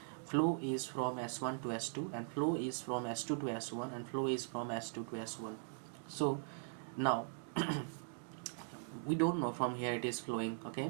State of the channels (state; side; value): silent; left; digital silence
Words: Flow is from S1 to S2, and flow is from S2 to S1, and flow is from S2 to S1. So now we don't know from here it is flowing. Okay,